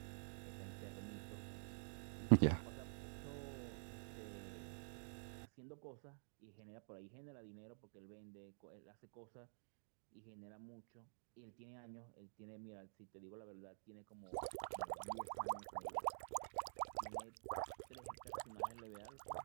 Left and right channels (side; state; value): left; silent; digital silence